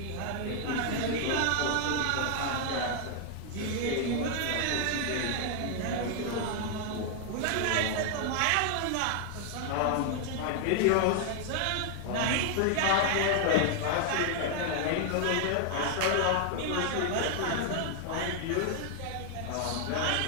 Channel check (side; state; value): both; different; correlation 0.00